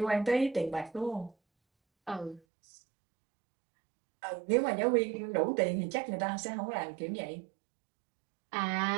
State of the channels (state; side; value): drops out; left; at 2.4 s